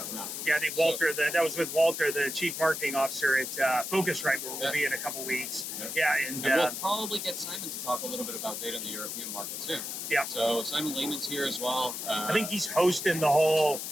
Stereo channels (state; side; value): noise; left; hiss, 5 dB below the sound